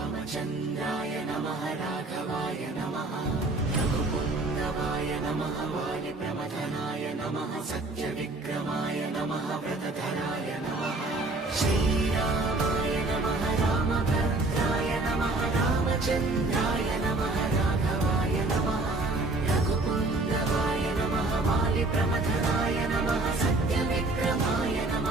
चन्द्राय नमः राघवाय नमः रघुपुङ्गवाय नमः वालिप्रमथनाय नमः सत्यविक्रमाय नमः व्रतधराय नमः श्रीरामाय नमः रामभद्राय नमः रामचन्द्राय नमः राघवाय नमः रघुपुङ्गवाय नमः वालिप्रमथनाय नमः सत्यविक्रमाय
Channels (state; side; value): quieter; left; 3.1 dB